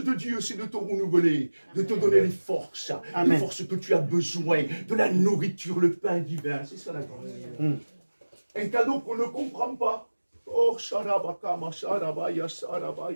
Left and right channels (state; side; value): inverted; both; correlation -1.00